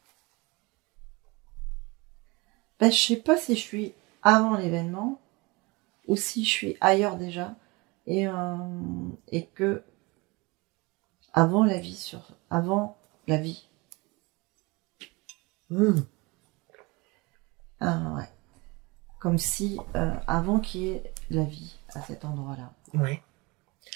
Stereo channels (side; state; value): left; quieter; 25.4 dB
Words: Ben, je sais pas si je suis avant l'événement ou si je suis ailleurs déjà et que avant la vie la vie. Ouais. Comme si avant qu'il y ait la vie à cet endroit-là. Ouais.